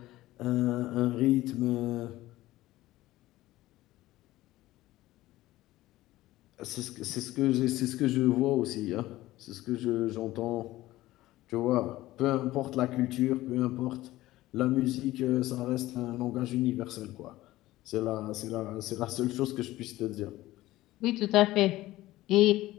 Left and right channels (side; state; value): right; quieter; 16.7 dB